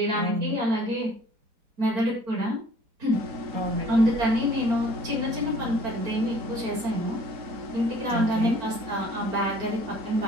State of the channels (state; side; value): late; left; 4.5 ms